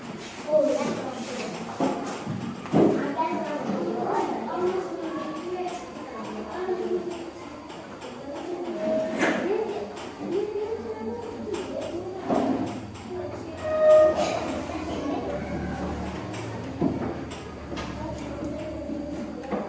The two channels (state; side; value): identical; both; correlation 1.00